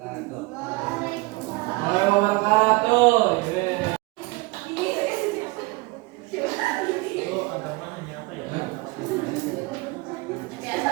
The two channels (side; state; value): left; quieter; 24.3 dB